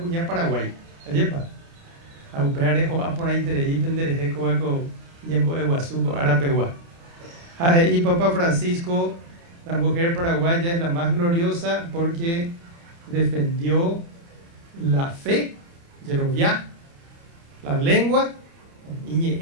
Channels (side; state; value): left; late; 29 ms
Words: Paraguay. Ayepa. A Upearejo, a por ahí Terei, Pendereje, Coaco, Yembo, Eguazuco, Arapegua. Y Papa Francisco, la mujer paraguaya es la más gloriosa porque defendió la fe, Yeroviá, la lengua,